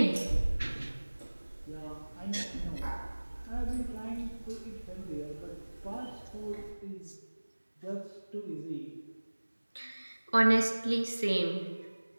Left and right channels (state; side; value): inverted; both; correlation -1.00